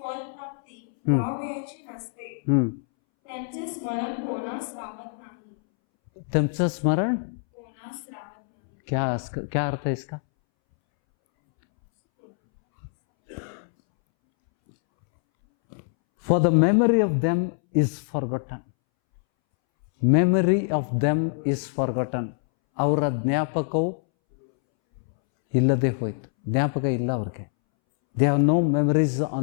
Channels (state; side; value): silent; right; 62 dB below the other